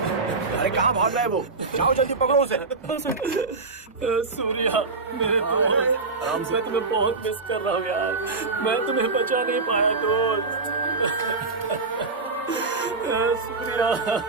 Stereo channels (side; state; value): left; quieter; 4.0 dB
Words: अरे कहाँ भाग रहा है वो? जाओ जल्दी पकड़ो उसे। सूर्या, मेरे दोस्त, आराम से। मैं तुम्हें बहुत मिस कर रहा हूँ यार। मैं तुम्हें बचा नहीं पाया दोस्त। सूर्या,